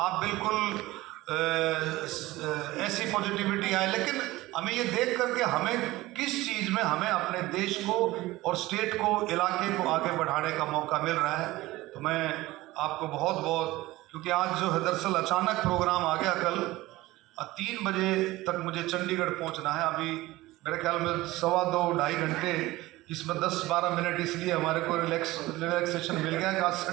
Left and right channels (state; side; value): quieter; left; 18.5 dB